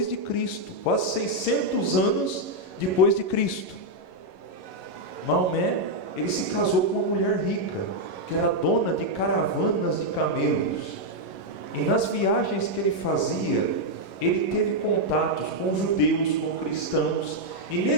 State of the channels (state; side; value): late; right; 11 ms